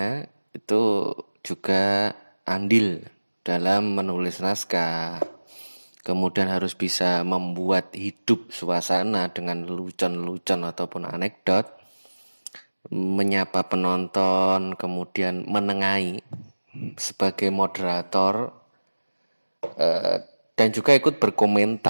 itu juga andil dalam menulis naskah. Kemudian harus bisa membuat hidup suasana dengan lelucon-lelucon ataupun anekdot, menyapa penonton, kemudian menengahi sebagai moderator, dan juga ikut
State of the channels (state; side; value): inverted; both; correlation -1.00